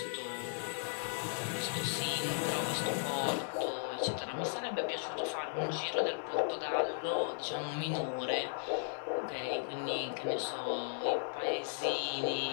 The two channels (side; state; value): right; silent; 54 dB below the other